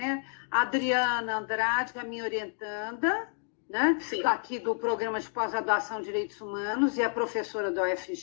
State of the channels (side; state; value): right; silent; 58 dB below the other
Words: A Adriana Andrade, a minha orientanda, né? Aqui do Programa de Pós-Graduação em Direitos Humanos, e a professora da